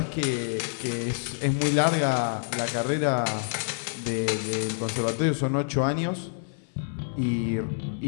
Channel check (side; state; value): right; silent; digital silence